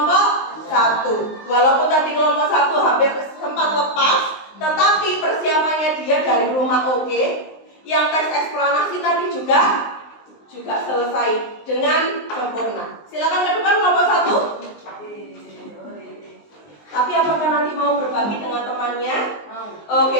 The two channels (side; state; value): right; late; 19 ms